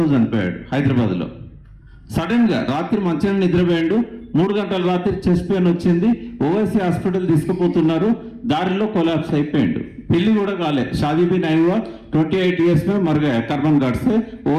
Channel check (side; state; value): both; identical; correlation 1.00